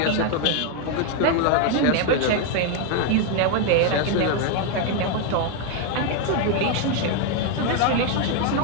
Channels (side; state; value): both; different; correlation 0.01